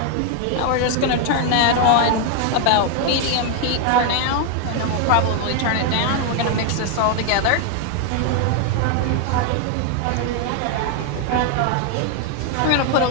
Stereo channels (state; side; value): different; both; correlation 0.01